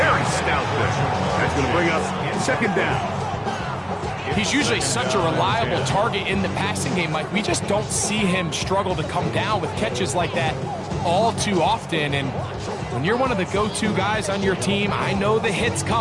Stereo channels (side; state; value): both; identical; correlation 1.00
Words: very stout there. That's going to bring up 2nd down. He's usually such a reliable target in the passing game, Mike. We just don't see him struggle to come down with catches like that all too often. And when you're one of the go-to guys on your team, I know the hit's